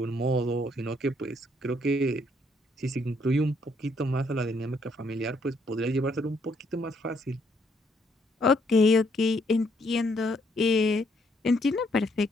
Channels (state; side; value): normal; both; correlation 0.71